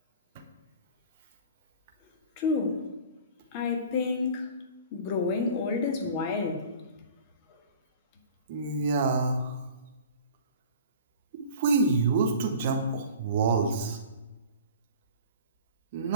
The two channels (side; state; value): both; inverted; correlation -0.42